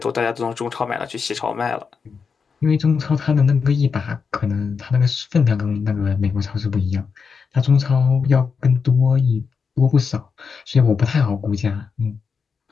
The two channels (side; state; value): right; quieter; 5.6 dB